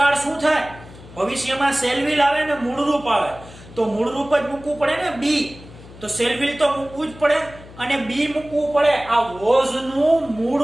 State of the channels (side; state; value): left; noise; hum, 19 dB below the sound